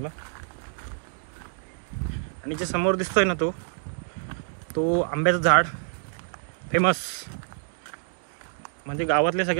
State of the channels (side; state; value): left; silent; digital silence